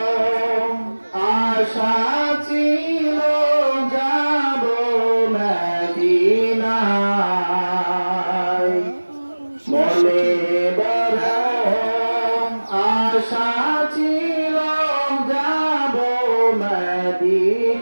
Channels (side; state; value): both; inverted; correlation -1.00